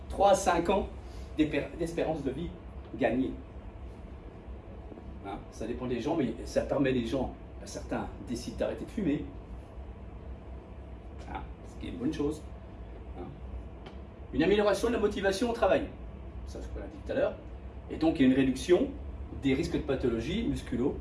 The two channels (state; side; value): identical; both; correlation 1.00